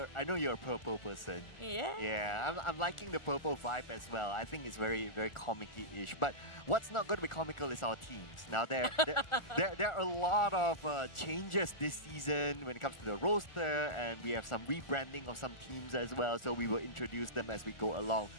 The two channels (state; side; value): late; right; 1.4 ms